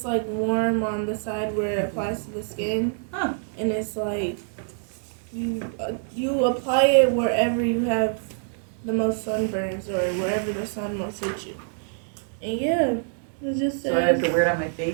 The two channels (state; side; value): silent; left; digital silence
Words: like warm on the side where it applies to the skin. Huh. And it's like, you apply it wherever you have the most sunburns or wherever the sun most hits you. And yeah, it just says. So I have to wear it on my